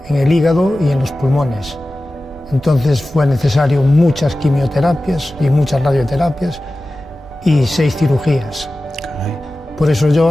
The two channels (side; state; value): both; normal; correlation 0.95